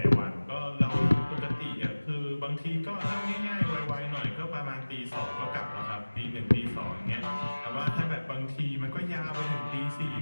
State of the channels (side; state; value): both; inverted; correlation -1.00